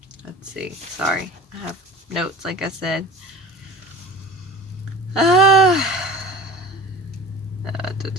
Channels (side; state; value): both; normal; correlation 0.38